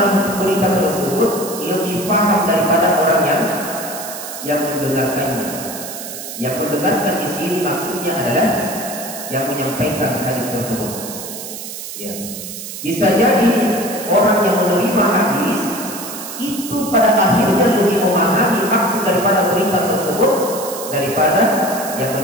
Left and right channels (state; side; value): noise; right; hiss, 9 dB below the sound